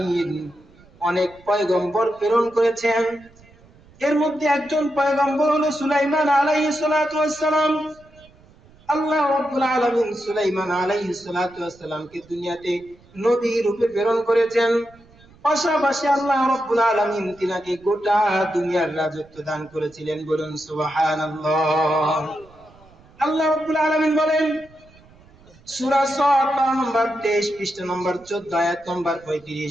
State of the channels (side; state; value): right; noise; rumble, 27 dB below the sound